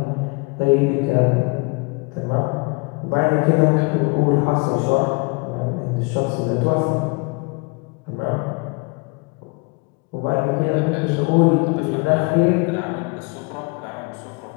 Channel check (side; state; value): right; quieter; 29.8 dB